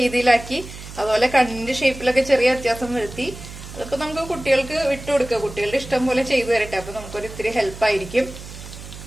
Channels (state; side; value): noise; right; hum, 14 dB below the sound